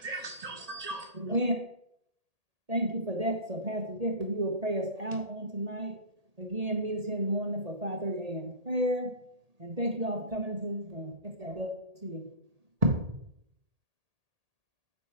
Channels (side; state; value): left; late; 1.8 ms